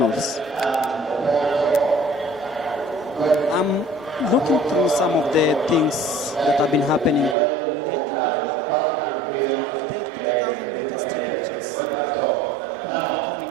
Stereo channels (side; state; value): left; drops out; at 7.4 s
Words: I'm looking through some of the things that have been happening lately. The 3,000 meter steeplechase quite